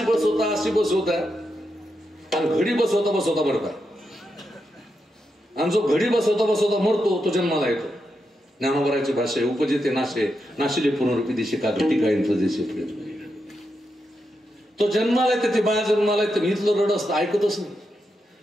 बसवता आणि घडी बसवता मरता. आणि जो घडी बसवता मरतो तो जन्माला येतो. ज्ञानोबराची भाषा उपजेते नाशिले पुनरुपी दिशे का घटी काय तो जन्माला येते. ते बाया जन्माला येते. मी इथलं रड असतं ऐकतच नाही.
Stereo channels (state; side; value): normal; both; correlation 0.85